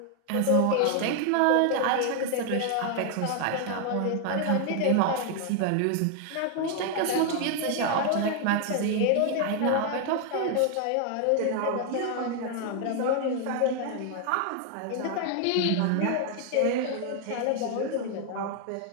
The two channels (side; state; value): both; different; correlation 0.00